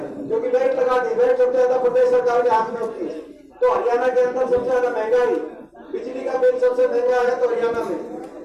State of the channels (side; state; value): both; identical; correlation 1.00